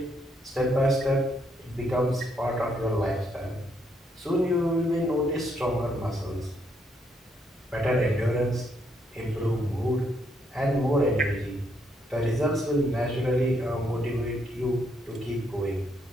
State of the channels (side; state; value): both; normal; correlation 0.74